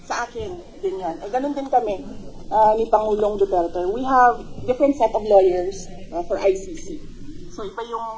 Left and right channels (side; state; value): both; identical; correlation 1.00